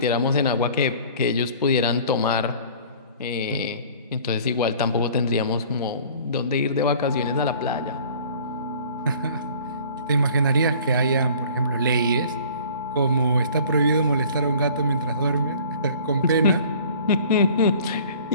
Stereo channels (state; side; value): inverted; both; correlation -0.49